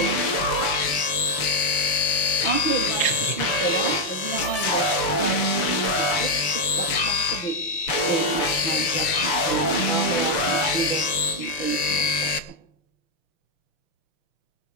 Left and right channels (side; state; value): right; late; 6.8 ms